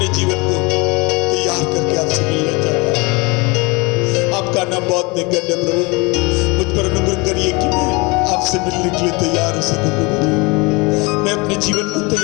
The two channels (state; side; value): quieter; right; 27.0 dB